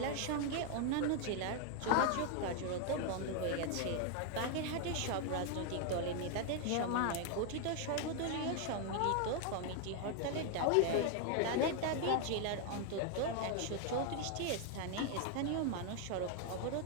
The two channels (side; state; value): both; different; correlation 0.00